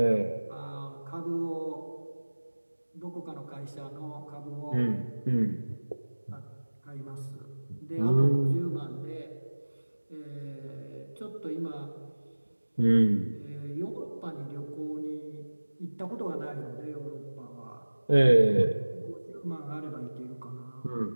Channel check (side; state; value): both; inverted; correlation -1.00